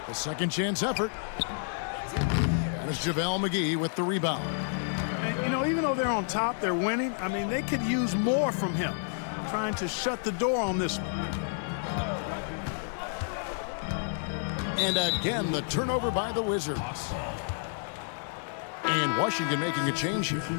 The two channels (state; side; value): silent; right; 58 dB below the other